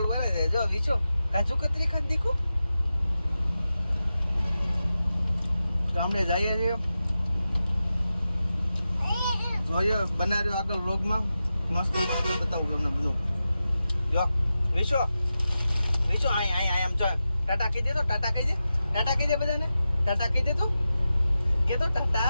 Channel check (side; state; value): both; inverted; correlation -0.92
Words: કરે છે. જો વિશ્વ કાજુ કતરી ખાત દેખું. ગામડે જઈએ છીએ. જોઈએ બનાવ્યો આગળ વ્લોગમાં મસ્ત બતાવું તમને બધું. જો વિશો આય આમ જો ટાટા કહી દે તો ટાટા કહી દે બધાને ટાટા કહી દે તો કે તો